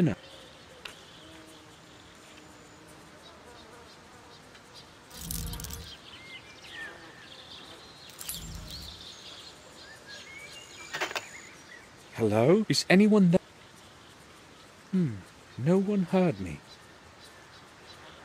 Hello? Is anyone there? No one heard me.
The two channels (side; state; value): both; identical; correlation 1.00